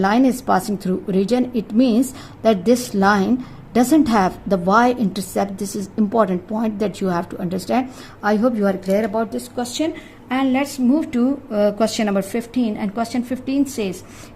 is passing through origin. It means that this line doesn't have the y-intercept. This is important point that you have to understand. I hope you are clear about this question. And let's move to question number 15. And question 15 says,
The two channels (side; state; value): both; identical; correlation 1.00